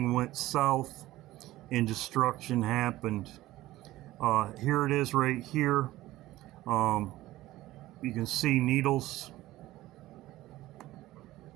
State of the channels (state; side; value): quieter; left; 16.5 dB